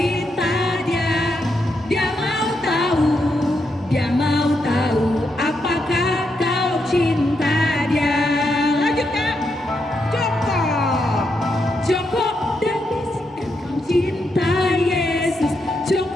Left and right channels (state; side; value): normal; both; correlation 0.82